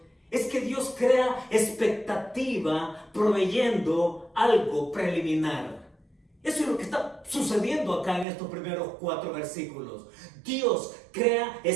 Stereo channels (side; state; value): left; drops out; at 8.2 s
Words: es que Dios crea expectativa proveyendo algo preliminar. Eso es lo que está sucediendo acá en estos primeros 4 versículos. Dios crea